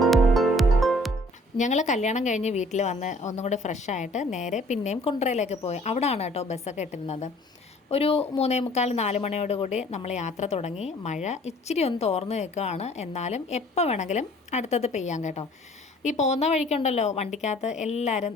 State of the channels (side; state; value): both; normal; correlation 0.55